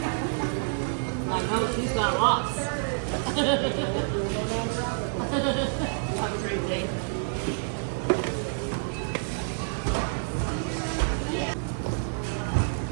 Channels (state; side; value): silent; left; digital silence